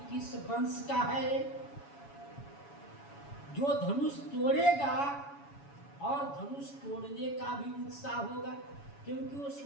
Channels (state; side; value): late; right; 7.1 ms